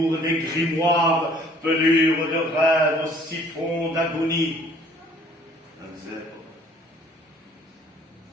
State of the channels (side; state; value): both; normal; correlation 0.56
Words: des grimoires, pelures de rêves, siphons d'agonie.